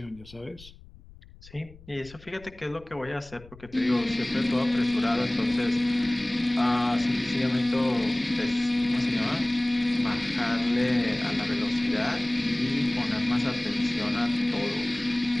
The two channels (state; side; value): noise; left; rumble, 21 dB below the sound